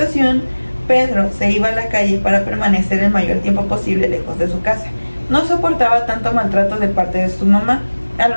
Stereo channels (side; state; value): both; inverted; correlation -1.00